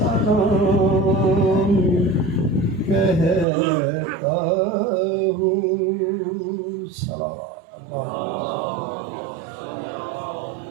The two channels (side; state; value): left; drops out; at 3.5 s